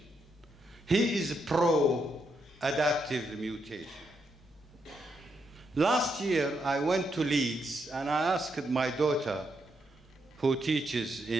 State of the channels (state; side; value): normal; both; correlation 0.80